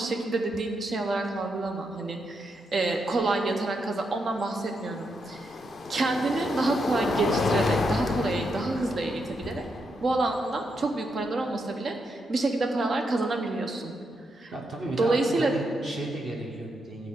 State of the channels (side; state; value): both; normal; correlation 0.82